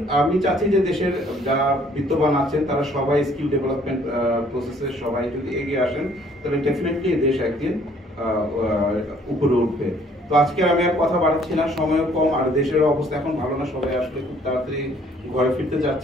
আমি চাচ্ছি যে দেশের যারা বিত্তবান আছেন তারা সবাই স্কিল ডেভেলপমেন্ট প্রসেসে সবাই যদি এগিয়ে আসেন, তবে ডেফিনেটলি দেশ একদিন উপরে উঠবে। তো আজকে আমি আর কথা বাড়াচ্ছি না, সময়ও কম, আর দেশের অবস্থা এখন ভালো না। সবাই আসলে খুব তাড়াতাড়ি ঘরে ফিরতে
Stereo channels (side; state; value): both; normal; correlation 0.60